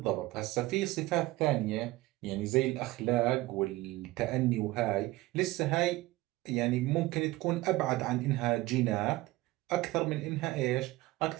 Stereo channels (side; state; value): left; quieter; 18.6 dB